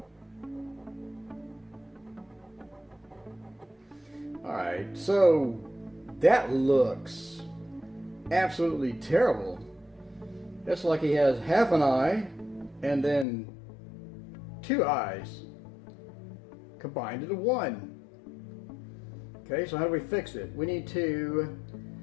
Alright, so that looks absolutely terrible. It's like he has half an eye and then 2 eyes combined into 1. Okay, so how do we fix it? We need to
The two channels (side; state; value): right; drops out; at 13.2 s